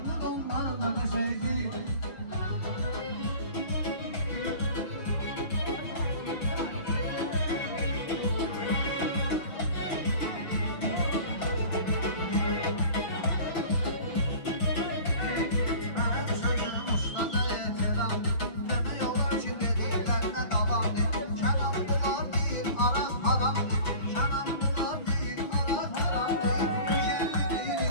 ondan da geçerli. Benim sözüm ustada ehtiram, demiyorlar ki dediklerine devam et. Kenanlılar değil, arak haram değil. Kenanlılar değil, arak haram değil. Güzelli değil,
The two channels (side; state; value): right; late; 6.2 ms